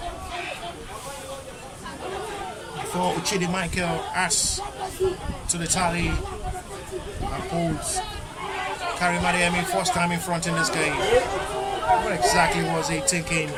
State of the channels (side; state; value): both; identical; correlation 1.00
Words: Before Uchidi Michael adds to the tally and pulls Karim Adeyemi first time in front in this game. What exactly was he thinking?